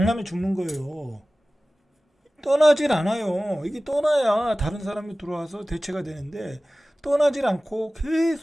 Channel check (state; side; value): normal; both; correlation 0.97